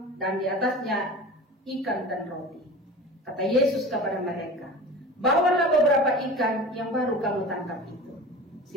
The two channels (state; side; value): normal; both; correlation 0.35